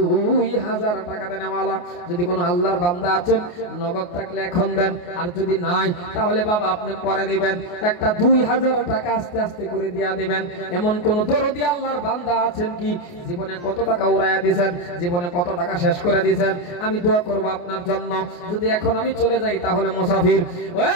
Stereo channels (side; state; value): right; late; 28 ms